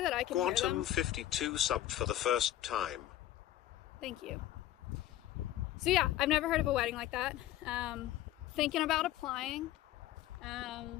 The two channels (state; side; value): quieter; right; 13.6 dB